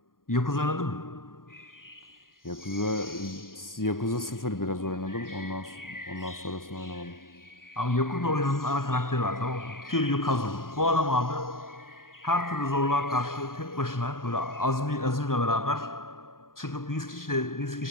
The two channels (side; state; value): right; late; 0.91 ms